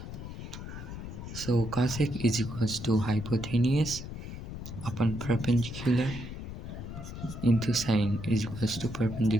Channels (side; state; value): left; noise; rumble, 9 dB below the sound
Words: So cosec is equals to hypotenuse upon perpendicular into sine is equals to